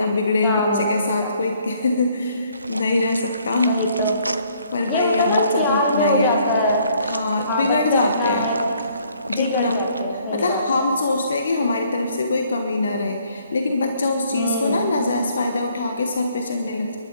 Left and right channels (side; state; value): both; inverted; correlation -0.64